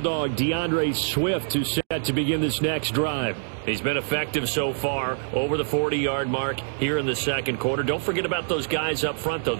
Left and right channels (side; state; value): left; silent; digital silence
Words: DeAndre Swift, who's set to begin this next drive. He's been effective so far, over the 40-yard mark here in the second quarter. Don't forget about those guys up front, though.